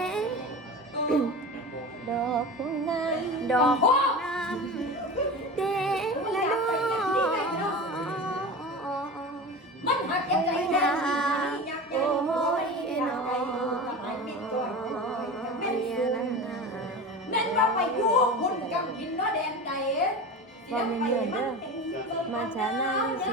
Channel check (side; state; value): both; normal; correlation 0.30